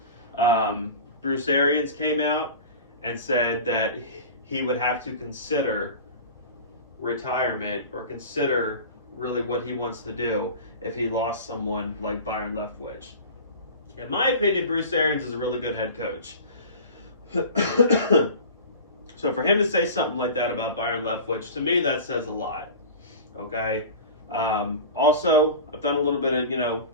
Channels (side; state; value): both; inverted; correlation -0.35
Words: Bruce Arians came out and said that he would have to consider retirement or consider really what he wants to do if he lost someone like Byron Leftwich. In my opinion, Bruce Arians is a really good head coach. So for him to say something like that about Byron Leftwich, to me, that says a lot. Okay. Also, I've done a little bit of,